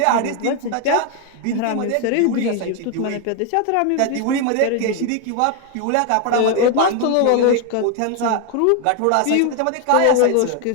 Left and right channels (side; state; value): both; different; correlation 0.01